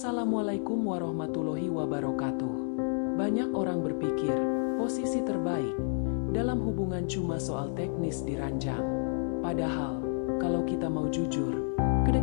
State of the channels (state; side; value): silent; right; 58 dB below the other